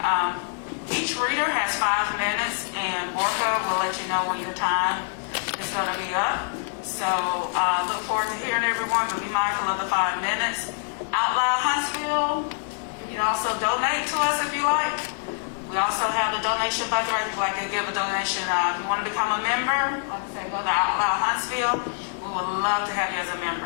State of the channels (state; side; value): silent; right; digital silence